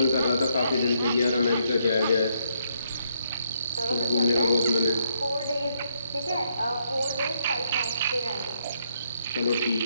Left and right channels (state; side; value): inverted; both; correlation -0.73